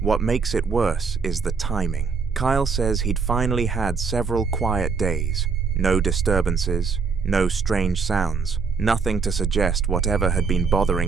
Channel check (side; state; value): left; quieter; 5.2 dB